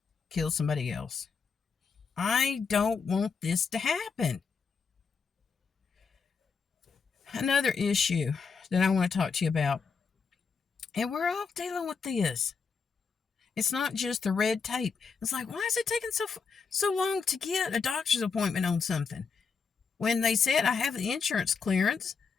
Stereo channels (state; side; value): quieter; right; 5.5 dB